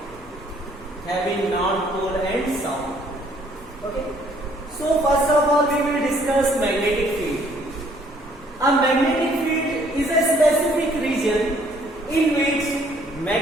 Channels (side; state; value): both; normal; correlation 0.62